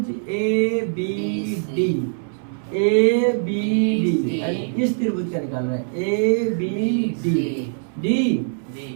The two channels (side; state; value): left; silent; 64 dB below the other